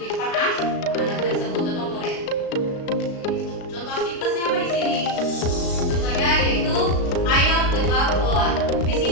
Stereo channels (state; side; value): late; right; 36 ms